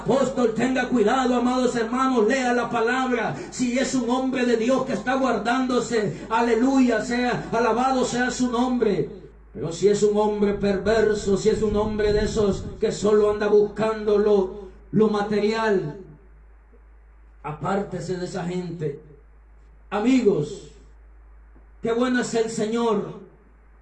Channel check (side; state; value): both; identical; correlation 1.00